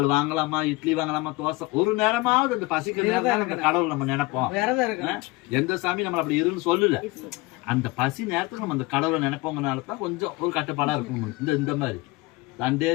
வாங்கலாமா, இட்லி வாங்கலாமா, தோசை ஒரு நேரமாவது இந்த பசிக்கிற நேரம் அந்த கடவுள் நம்ம நினைப்போம். எந்த சாமி நம்மள அப்படி இருன்னு சொல்லல. அந்த பசி நேரத்துக்கு நம்ம அந்த கடவுளை நினைப்போங்கனாலதான் கொஞ்சம் ஒரு கட்டுப்பாடா இருக்கும். இந்த மாதிரி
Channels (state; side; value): quieter; right; 22.4 dB